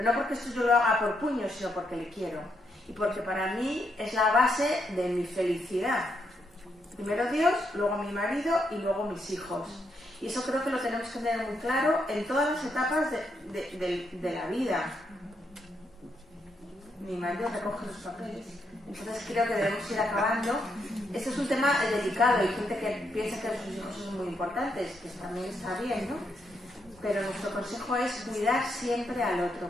no porque esto yo lo haga por puño, sino porque le quiero. Y porque para mí es la base de mi felicidad. Primero Dios, luego mi marido y luego mis hijos. Y eso creo que lo tenemos que tener muy claro en todas las etapas de la vida. Mi marido recoge los papeles. Entonces creo que debemos ir acabando. Este es un tema delicado. Hay gente que piensa que sus hijos son muy importantes, que también está bien, ¿no? Pero nuestro consejo es cuidar siempre al otro,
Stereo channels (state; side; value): normal; both; correlation 0.78